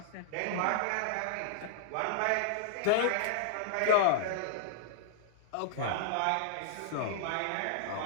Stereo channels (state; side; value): different; both; correlation -0.01